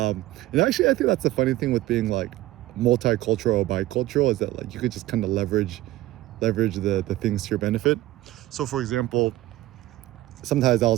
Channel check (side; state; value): left; quieter; 16.3 dB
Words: actually, I think that's the funny thing with being like multicultural or bicultural, is that like you could just kind of leverage the things to your benefit. So for example, sometimes I